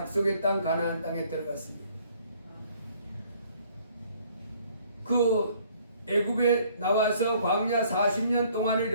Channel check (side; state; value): both; inverted; correlation -0.60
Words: 땅 가나안 땅에 들어갔습니다. 그 애굽에 나와서 광야 40년 동안